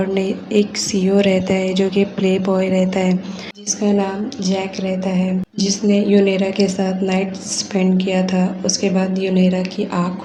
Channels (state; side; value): identical; both; correlation 1.00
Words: नहीं, एक CEO रहता है जो कि प्ले बॉय रहता है, जिसका नाम जैक रहता है, जिसने यूनेरा के साथ नाइट स्पेंड किया था। उसके बाद यूनेरा की आँख